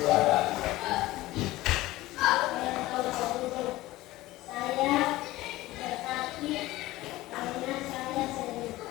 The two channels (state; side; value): quieter; right; 17.7 dB